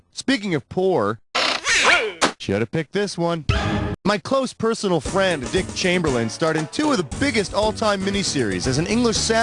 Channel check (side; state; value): both; identical; correlation 1.00